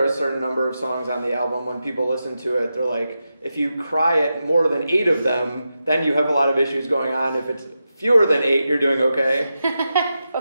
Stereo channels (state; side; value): inverted; both; correlation -0.89